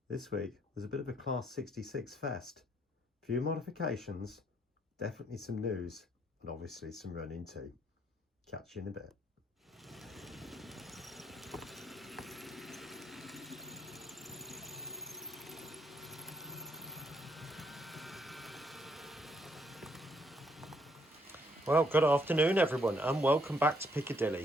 This week was a bit of a Class 66 fest. Few modifications, definitely some news, and obviously some running too. Catch you in a bit. Well, good afternoon everyone, and welcome back to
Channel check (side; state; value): both; normal; correlation 0.70